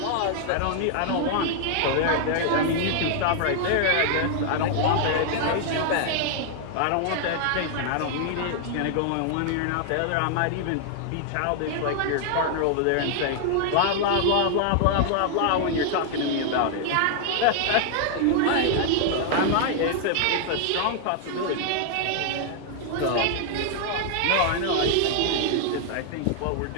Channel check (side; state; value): both; different; correlation 0.00